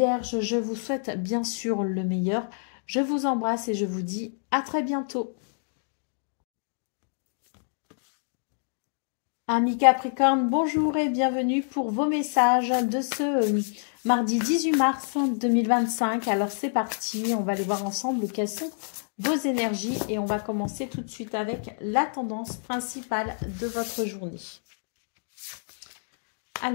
Je vous souhaite bien sûr le meilleur. Je vous embrasse et je vous dis à très bientôt. Amis Capricorne, bonjour et bienvenue pour vos messages de ce mardi 18 mars 2025. Alors c'est parti, on va aller voir ensemble quelles sont vos énergies et on va commencer tout de suite avec la tendance principale de votre journée.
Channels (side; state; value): right; silent; digital silence